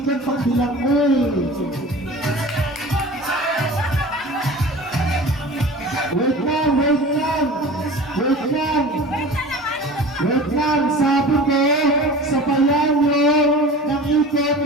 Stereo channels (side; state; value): both; normal; correlation 0.38